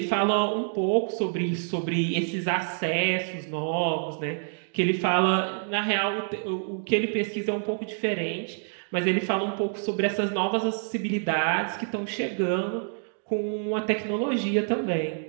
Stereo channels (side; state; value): left; silent; 60 dB below the other